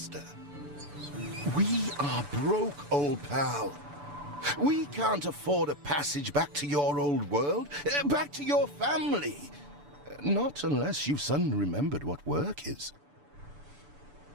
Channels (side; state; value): left; late; 6.9 ms